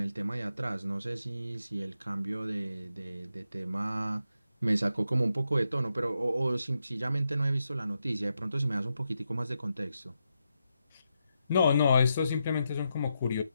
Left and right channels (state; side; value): inverted; both; correlation -0.85